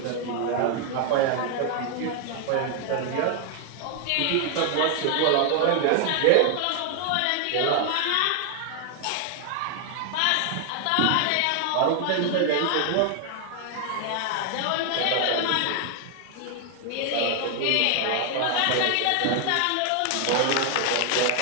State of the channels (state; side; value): different; both; correlation 0.00